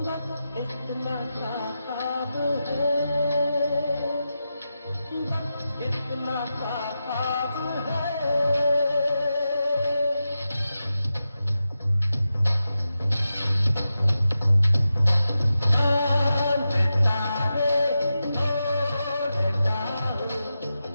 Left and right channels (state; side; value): inverted; both; correlation -0.90